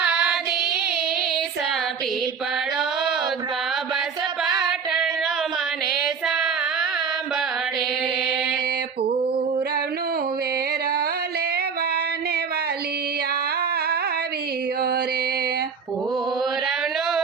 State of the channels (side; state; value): left; quieter; 6.1 dB